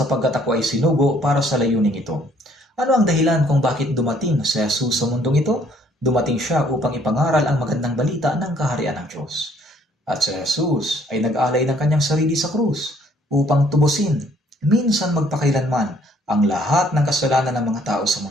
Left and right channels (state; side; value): normal; both; correlation 0.63